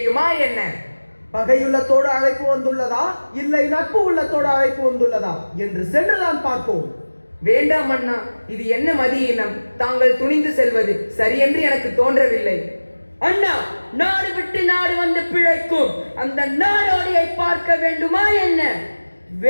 என்ன? பகையுள்ளத்தோடு அழைப்பு வந்துள்ளதா இல்லை நட்பு உள்ளத்தோடு அழைப்பு வந்துள்ளதா என்று சென்றுதான் பார்ப்போம். வேண்டாம் அண்ணா, இது என்ன மதியினம்? தாங்கள் துணிந்து செல்வது சரியென்று எனக்கு தோன்றவில்லை. அண்ணா, நாடு விட்டு நாடு வந்து பிழைக்கும் அந்த நாடோடியை பார்க்க வேண்டுமா என்ன?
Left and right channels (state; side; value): inverted; both; correlation -1.00